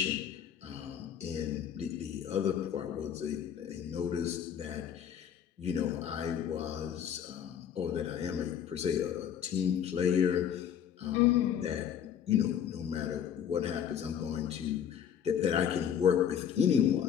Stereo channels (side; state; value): right; quieter; 8.9 dB